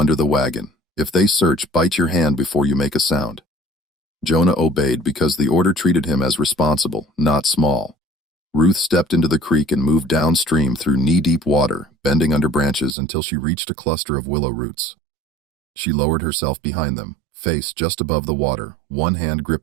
the wagon. If they search, bite your hand before you make a sound." Jonah obeyed because the order treated him as responsible, not small. Ruth stepped into the creek and moved downstream through knee-deep water, bending under branches until she reached a cluster of willow roots. She lowered herself behind them, face just above the water, one hand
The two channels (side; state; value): left; drops out; at 13.0 s